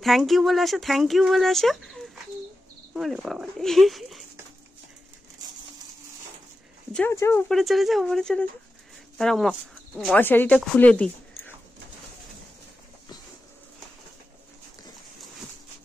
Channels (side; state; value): both; normal; correlation 0.92